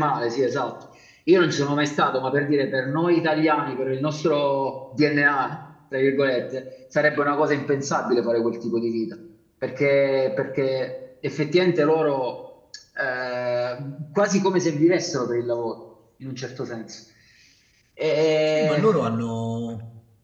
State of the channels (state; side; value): identical; both; correlation 1.00